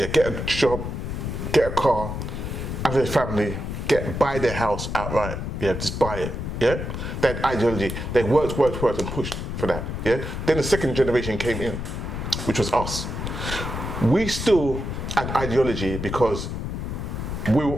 get a job, get a car, have a family, buy their house outright. Yeah, just buy it. Yeah, that ideology. They worked and pushed for that. Yeah. Then the second generation came in, which was us. We still had ideology because we were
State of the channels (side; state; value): left; noise; rumble, 5 dB below the sound